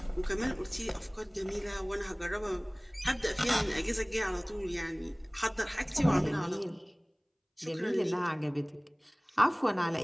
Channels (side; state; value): both; identical; correlation 1.00